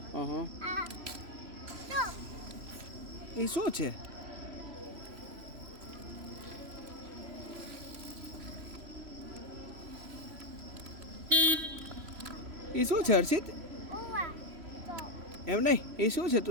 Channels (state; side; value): late; left; 3.0 ms